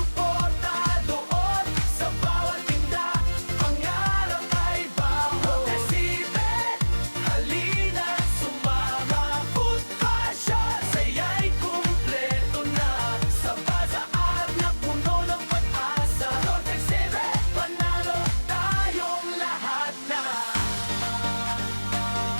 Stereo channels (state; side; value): inverted; both; correlation -1.00